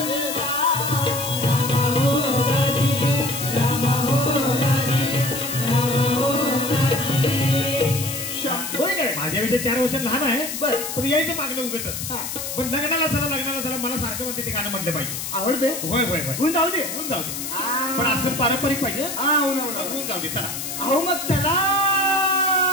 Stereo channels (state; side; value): noise; left; hiss, 5 dB below the sound